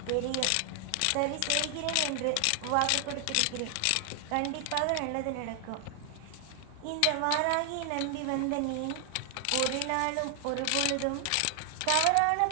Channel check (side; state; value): both; different; correlation 0.00